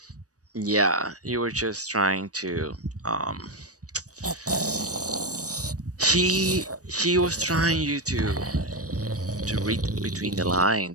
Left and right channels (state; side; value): late; left; 0.66 ms